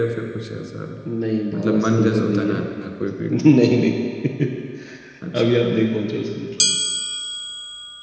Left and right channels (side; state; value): both; identical; correlation 1.00